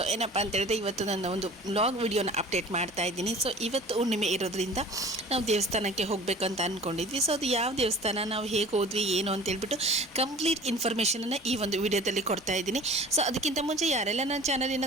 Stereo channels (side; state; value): both; normal; correlation 0.44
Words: ಏನಪ್ಪ ಅಂತ ಹೇಳಿದ್ರೆ ಇವತ್ತು ನನ್ನ ಒಂದು ಬ್ಲಾಗ್ ವಿಡಿಯೋನ ಅಪ್ಡೇಟ್ ಮಾಡ್ತಾ ಇದ್ದೀನಿ. ಸೊ ಇವತ್ತು ಹುಣ್ಣಿಮೆ ಇರೋದ್ರಿಂದ ನಾವು ದೇವಸ್ಥಾನಕ್ಕೆ ಹೋಗಬೇಕು ಅಂತ ಅಂದ್ಕೊಂಡಿದ್ವಿ. ಸೊ ಅದು ಯಾವ ದೇವಸ್ಥಾನ, ನಾವು ಹೇಗೆ ಹೋದ್ವಿ, ಏನು ಅಂತ ಹೇಳ್ಬಿಟ್ಟು ಕಂಪ್ಲೀಟ್ ಇನ್ಫಾರ್ಮೇಷನನ್ನು ಈ ಒಂದು ವಿಡಿಯೋದಲ್ಲಿ ಕೊಡ್ತಾ ಇದ್ದೀನಿ. ಸೊ ಅದಕ್ಕಿಂತ ಮುಂಚೆ ಯಾರೆಲ್ಲ ನನ್ನ